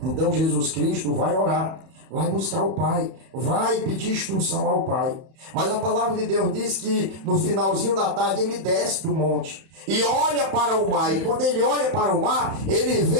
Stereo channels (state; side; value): late; left; 31 ms